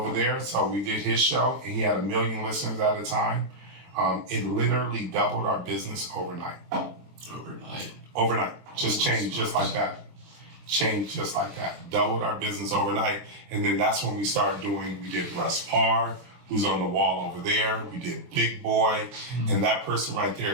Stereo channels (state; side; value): late; left; 23 ms